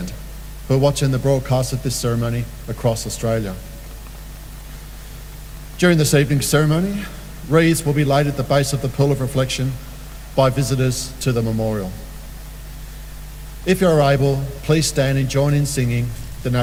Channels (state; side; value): identical; both; correlation 1.00